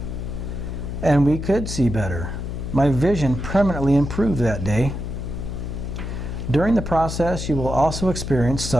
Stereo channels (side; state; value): left; noise; hum, 5 dB below the sound